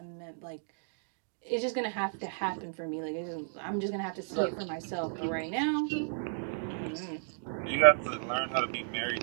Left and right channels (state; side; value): silent; left; digital silence